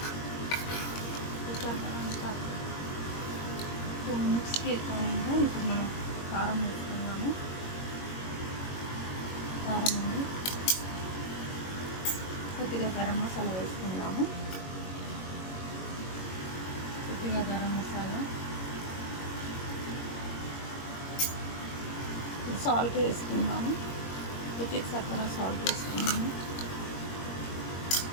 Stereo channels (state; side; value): late; right; 21 ms